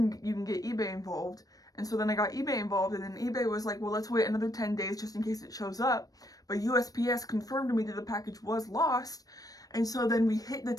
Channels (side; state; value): right; late; 0.18 ms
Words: you can get eBay involved. And so then I got eBay involved, and then eBay was like, well, let's wait another 10 days just in case it shows up. But USPS confirmed to me that the package was lost. And so then we hit the